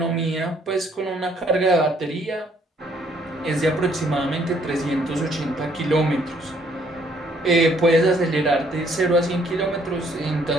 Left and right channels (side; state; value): both; normal; correlation 0.65